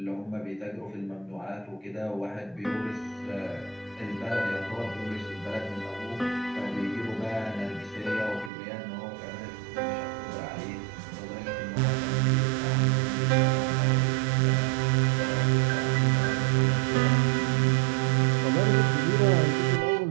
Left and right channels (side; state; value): left; drops out; at 8.5 s